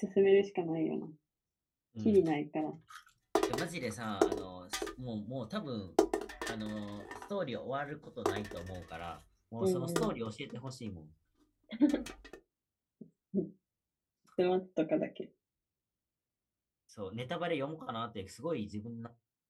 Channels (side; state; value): both; identical; correlation 1.00